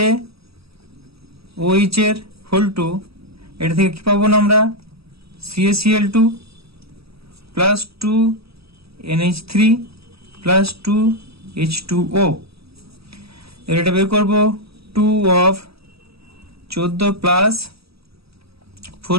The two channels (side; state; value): left; late; 0.77 ms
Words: এর হোল 2, এটা থেকে কি পাবো না আমরা CaCl2 plus 2NH3 plus 2H2O। এটা বের করবো 2 অফ 14 প্লাস